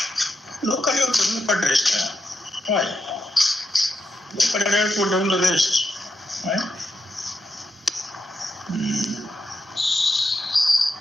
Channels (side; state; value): both; normal; correlation 0.84